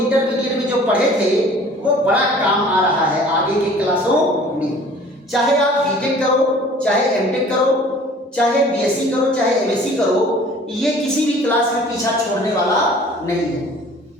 में जो पढ़े थे वो बड़ा काम आ रहा है आगे के क्लासों में। चाहे आप बीटेक करो, चाहे एमटेक करो, चाहे बीएससी करो, चाहे एमएससी करो, ये किसी भी क्लास में पीछा छोड़ने वाला नहीं है।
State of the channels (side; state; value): both; normal; correlation 0.49